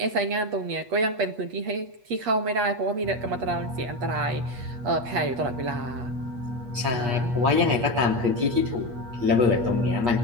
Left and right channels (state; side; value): late; left; 8.4 ms